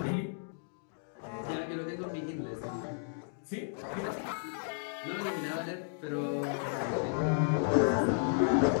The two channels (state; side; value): silent; right; digital silence